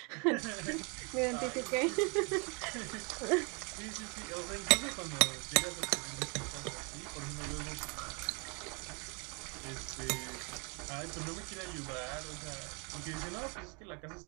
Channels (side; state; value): left; quieter; 33.5 dB